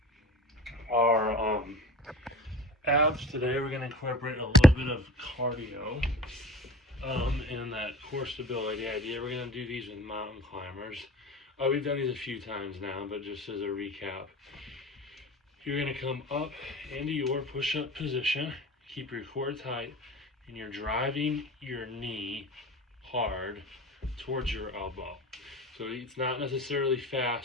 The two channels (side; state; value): both; normal; correlation 0.39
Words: our abs today, we're going to incorporate a little bit of cardio in that core stability idea. We're going to do these with mountain climbers. We've done these a few times now, but just as a recap, you're going to come up into your push-up position, keep your core tight, and you're driving your knee hard towards your elbow. So it's not necessarily